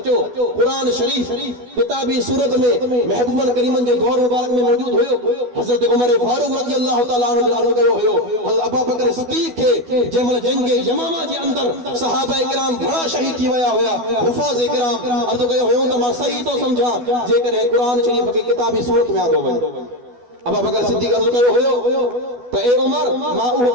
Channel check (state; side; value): late; left; 12 ms